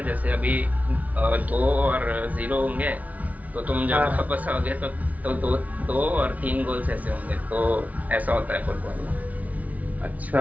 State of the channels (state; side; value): late; left; 0.072 ms